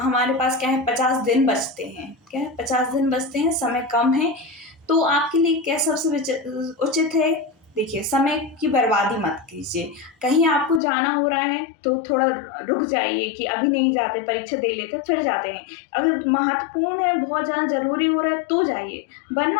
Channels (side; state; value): right; drops out; at 10.8 s